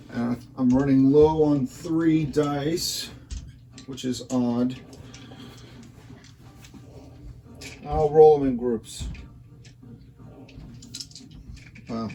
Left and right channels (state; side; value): identical; both; correlation 1.00